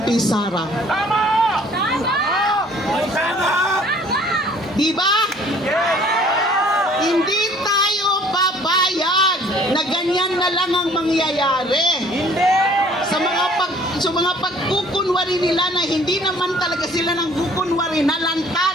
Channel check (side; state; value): both; normal; correlation 0.55